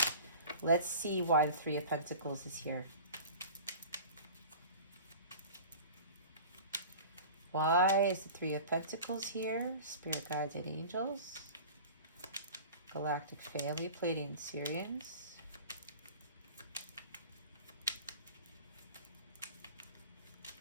Let's see why the 3 of Pentacles is here. Why is the 3 of Pentacles here? Spirit guides and angels. Galactic family, Pleiadian Syrians.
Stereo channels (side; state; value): both; inverted; correlation -0.38